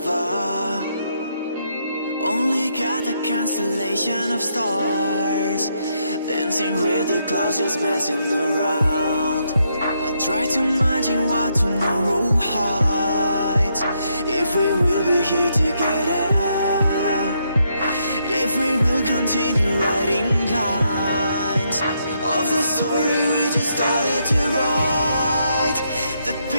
Only got a constellation of stars, dancing with the clouds, just messing around. I try to imagine what tomorrow hides, if we will be here together, if we will continue writing lines of the story we just started to write. The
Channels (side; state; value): both; inverted; correlation -0.77